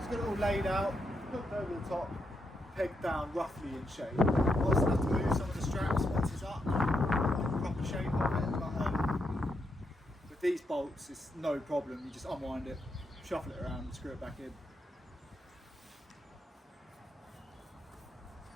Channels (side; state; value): both; normal; correlation 0.81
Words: Got it all laid out, hooked over the top, pegged down roughly in shape. I also have to move some of the straps once it's up, like the proper shape of it. But with these bolts, it's no problem. You just unwind it, shuffle it around, and screw it back in.